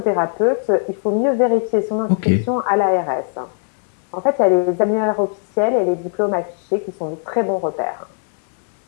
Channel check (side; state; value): right; silent; 66 dB below the other